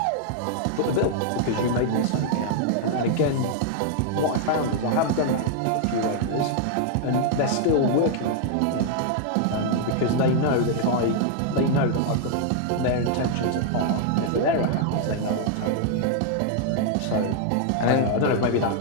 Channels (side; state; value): both; different; correlation 0.00